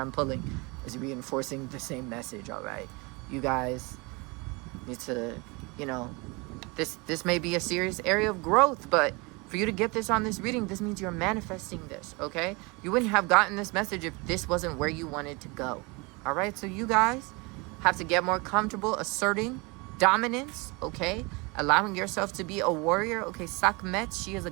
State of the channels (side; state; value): left; quieter; 27.5 dB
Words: pulling is reinforcing the same message, all right? You guys need to, you know, this may be a serious area of growth, but for you to get this on this reading, this means you're manifesting this, okay? You wouldn't have gotten this message if this wasn't where you wanted to go, all right? So you guys have to get more comfortable asserting dominance, okay? Allowing yourself to be a warrior, okay? Sekhmet, she is a